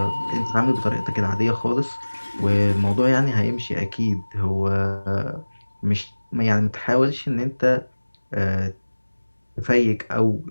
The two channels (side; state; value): both; inverted; correlation -1.00